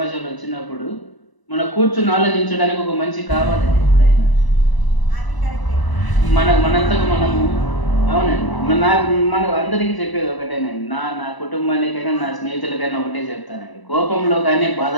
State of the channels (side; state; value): right; late; 1.0 ms